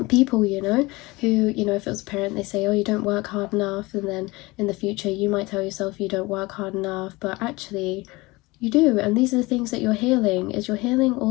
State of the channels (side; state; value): right; quieter; 22.4 dB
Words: people, you know, who, you know, if it was a parent, they say, oh, you don't work hard enough, and then in the future you might tell yourself you don't work hard enough, but actually you do. And these are the things that you're healing, is you're healing